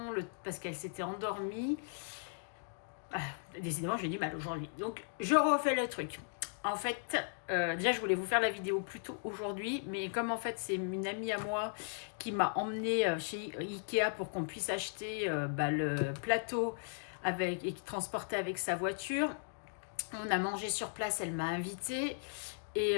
parce qu'elles s'étaient endormies. Ah, décidément, j'ai du mal aujourd'hui. Donc, je refais le truc. En fait, déjà, je voulais vous faire la vidéo plus tôt aujourd'hui, mais comme en fait, c'est une amie à moi qui m'a emmenée chez Ikea pour qu'on puisse acheter le plateau et qui transportait avec sa voiture. On a mangé sur place, elle m'a invitée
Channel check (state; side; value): silent; right; digital silence